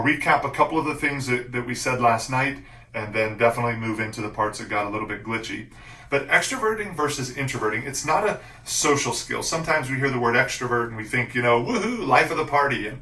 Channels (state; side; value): identical; both; correlation 1.00